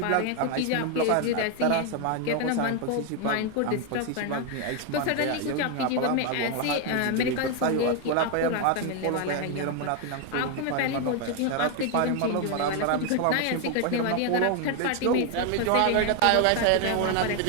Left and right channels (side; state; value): both; different; correlation 0.01